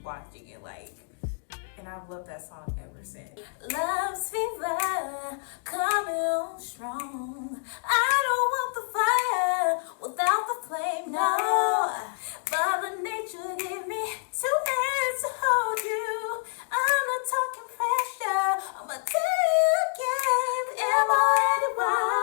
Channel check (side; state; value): right; silent; digital silence